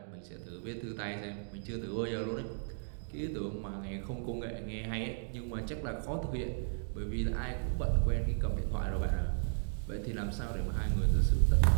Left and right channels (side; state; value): left; silent; digital silence